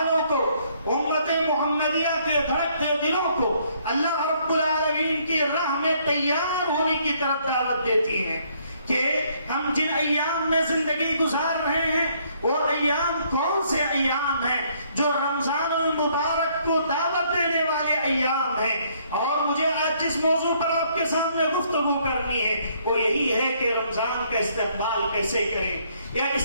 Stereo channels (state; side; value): inverted; both; correlation -0.67